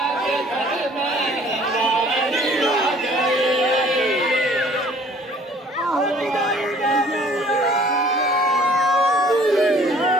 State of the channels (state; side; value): normal; both; correlation 0.54